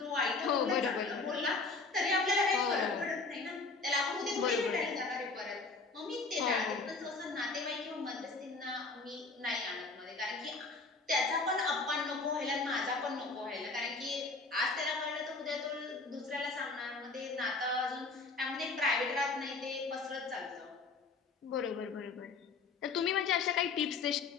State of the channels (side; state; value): right; quieter; 4.0 dB